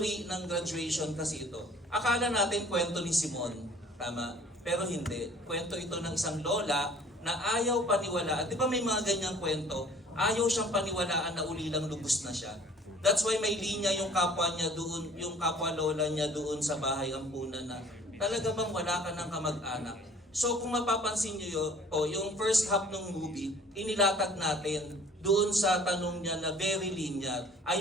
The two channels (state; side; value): normal; both; correlation 0.51